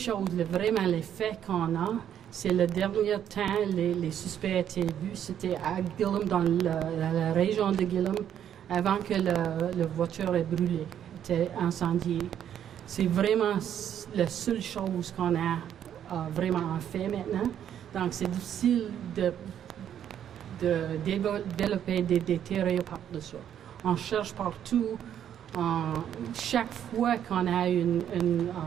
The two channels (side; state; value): left; quieter; 9.8 dB